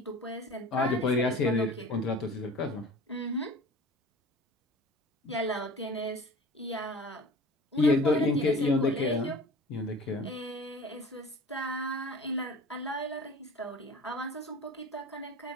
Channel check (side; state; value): both; normal; correlation 0.42